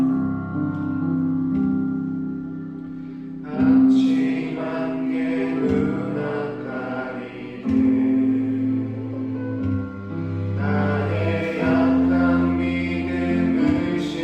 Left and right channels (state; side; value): identical; both; correlation 1.00